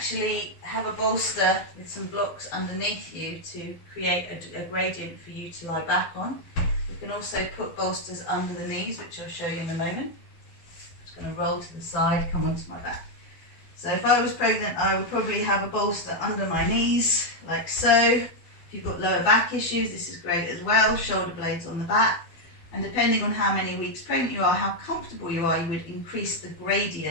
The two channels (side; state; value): right; late; 12 ms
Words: have a bolster with some blocks underneath you to create a gradient for you to lie back on. You can also put bolsters under the knees, which I'll show you in a moment. I'm just going to roll to the side, come onto my back. So if I was pregnant, I would probably have a bolster under my knees, like so. If you've got lower back issues, this is great as well. Shoulder blades on the back. And depending on how many weeks pregnant you are, how comfortable you are, you would increase the